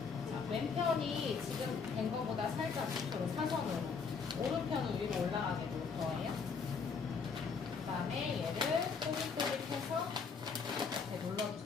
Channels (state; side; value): quieter; right; 5.5 dB